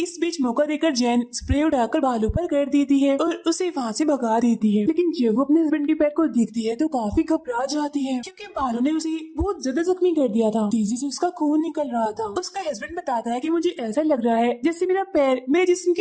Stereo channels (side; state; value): both; identical; correlation 1.00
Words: बीच मौका देकर जैन स्प्रे उड़ाकर भालू पर कर देती है और उसे वहाँ से भगा देती है। लेकिन जब वो अपने हस्बैंड के पैर को देखती है तो काफी घबरा जाती है, क्योंकि भालू ने उसे बहुत ज्यादा जख्मी कर दिया था। तेजी से उसका खून निकल रहा था। उसका हस्बैंड बताता है कि मुझे ऐसा लग रहा है जैसे मेरा पैर मेरे जिस्म